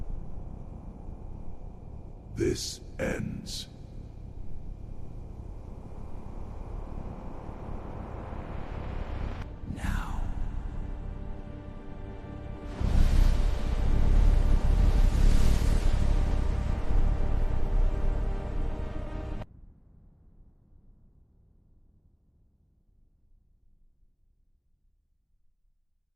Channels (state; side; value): identical; both; correlation 1.00